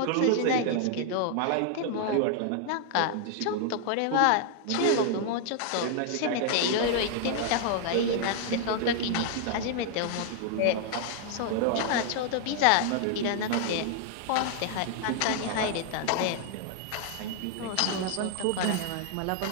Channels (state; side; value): different; both; correlation 0.00